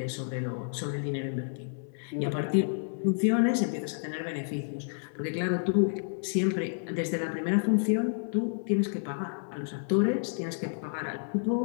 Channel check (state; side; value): silent; right; 58 dB below the other